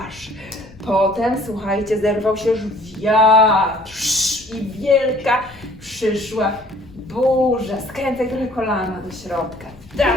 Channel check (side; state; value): left; noise; rumble, 23 dB below the sound